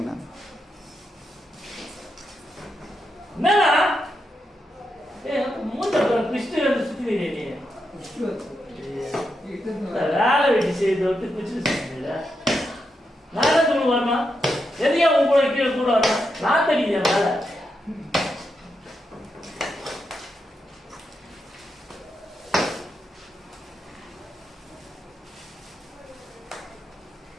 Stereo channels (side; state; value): both; normal; correlation 0.85